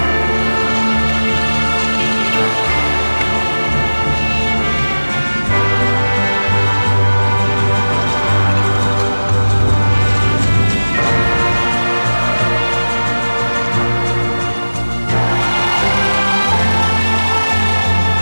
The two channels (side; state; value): both; inverted; correlation -1.00